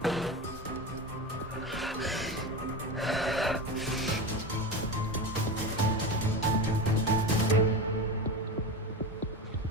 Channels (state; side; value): normal; both; correlation 0.23